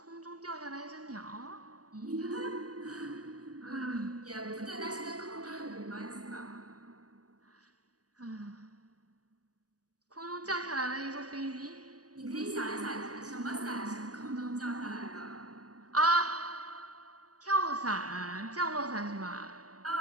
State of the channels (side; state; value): left; late; 0.67 ms